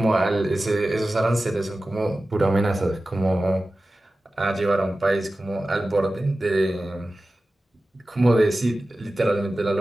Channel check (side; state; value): both; normal; correlation 0.95